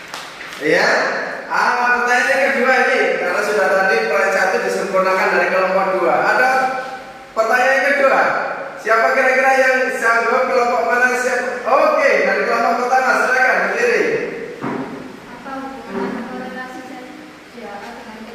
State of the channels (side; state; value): both; identical; correlation 1.00